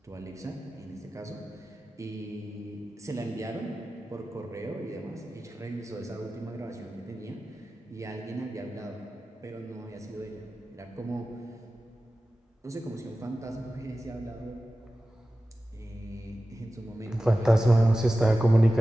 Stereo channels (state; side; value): normal; both; correlation 0.95